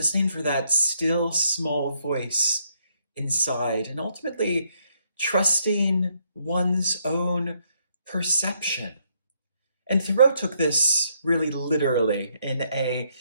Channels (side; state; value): both; inverted; correlation -0.73